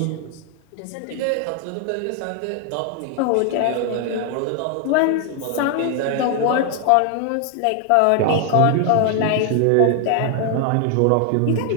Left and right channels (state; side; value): different; both; correlation 0.00